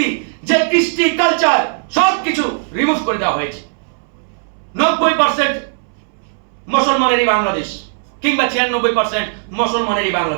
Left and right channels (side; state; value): left; silent; 65 dB below the other